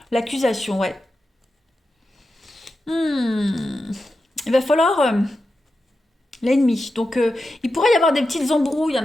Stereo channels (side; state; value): both; normal; correlation 0.90